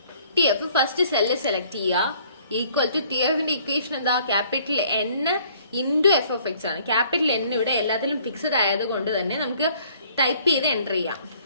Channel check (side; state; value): both; inverted; correlation -0.58